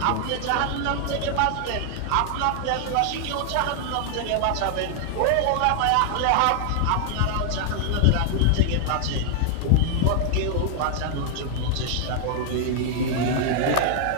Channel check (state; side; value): different; both; correlation 0.00